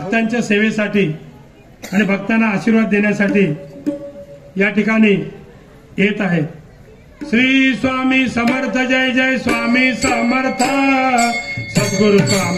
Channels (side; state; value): both; identical; correlation 1.00